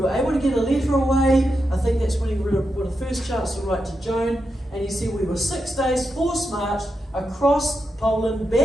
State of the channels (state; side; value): normal; both; correlation 0.86